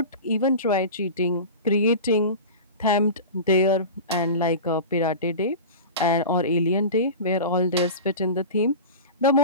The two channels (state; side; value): inverted; both; correlation -0.31